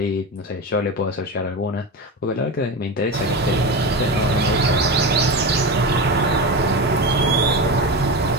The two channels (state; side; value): normal; both; correlation 0.22